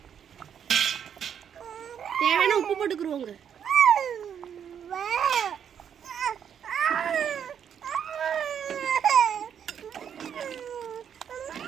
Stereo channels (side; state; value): left; quieter; 8.3 dB